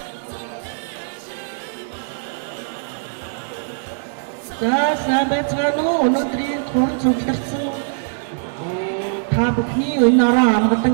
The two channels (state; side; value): silent; left; digital silence